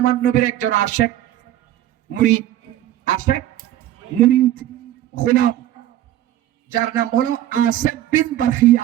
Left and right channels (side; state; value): left; quieter; 13.0 dB